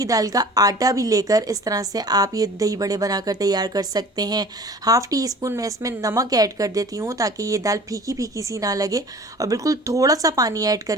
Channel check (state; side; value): normal; both; correlation 0.44